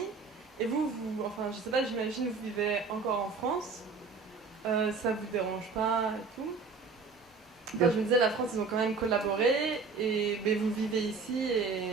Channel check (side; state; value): left; quieter; 4.6 dB